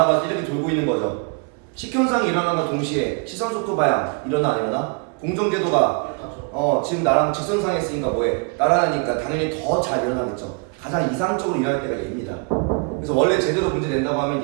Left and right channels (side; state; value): left; quieter; 35.0 dB